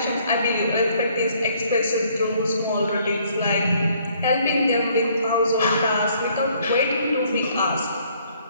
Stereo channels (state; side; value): inverted; both; correlation -0.63